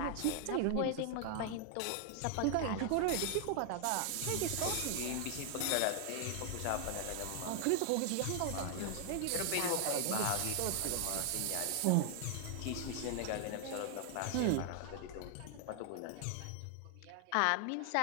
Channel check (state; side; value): different; both; correlation 0.00